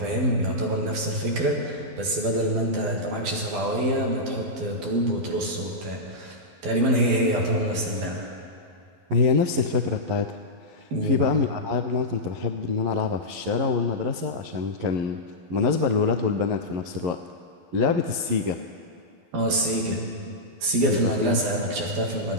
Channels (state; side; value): late; left; 12 ms